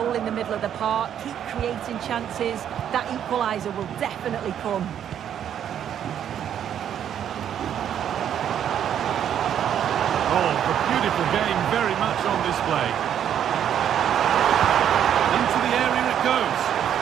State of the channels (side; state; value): left; quieter; 9.6 dB